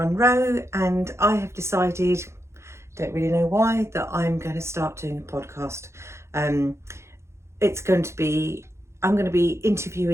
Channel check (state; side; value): late; left; 0.13 ms